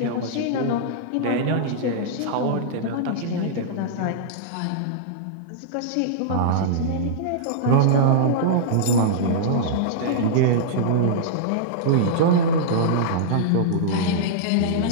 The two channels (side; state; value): both; different; correlation -0.02